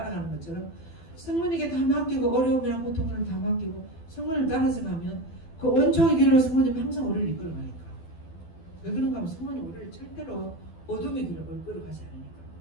것처럼 성모님에게 다 맡기고 어려움이나 고통을 다 맡기고 성모님을 따라서 가면 그 은총의 길로 성모님이 항상 우리를 이끌어가니까. 왜 그런가 하면 성모님 우리를 절대로 어둠의 길로 이끌어가지 않으니까.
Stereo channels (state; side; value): late; right; 12 ms